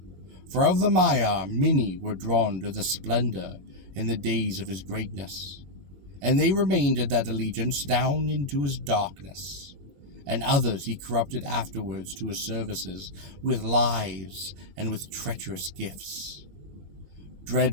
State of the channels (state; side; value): late; left; 20 ms